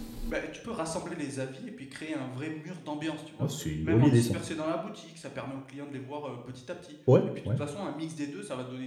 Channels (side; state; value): both; identical; correlation 1.00